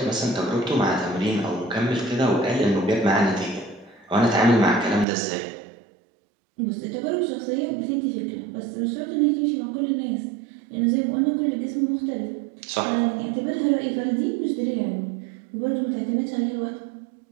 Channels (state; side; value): drops out; left; at 5.1 s